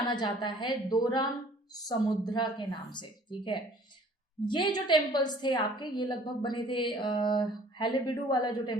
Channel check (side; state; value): both; normal; correlation 0.53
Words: जाता है दोराम समुद्रा के नाम से। ठीक है, ये जो टेम्पल्स थे आपके, ये लगभग बने थे, हाइलेबिडु वाला जो